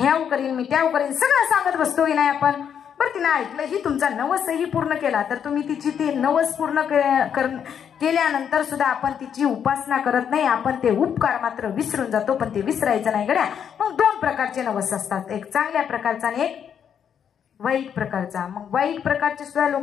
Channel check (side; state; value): right; quieter; 8.2 dB